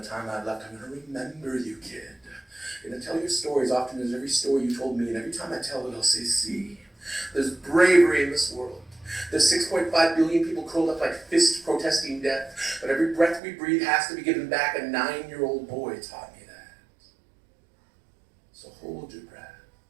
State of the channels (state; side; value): drops out; left; at 13.4 s